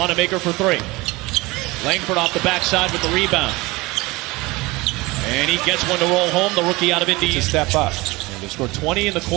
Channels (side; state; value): left; quieter; 22.4 dB